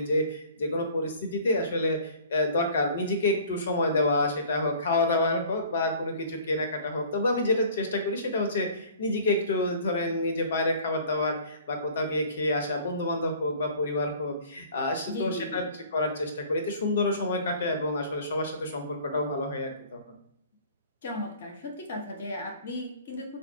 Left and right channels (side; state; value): both; inverted; correlation -0.49